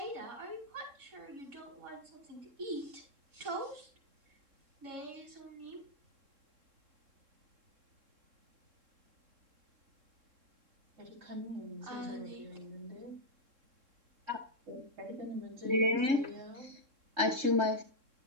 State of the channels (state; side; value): late; left; 3.7 ms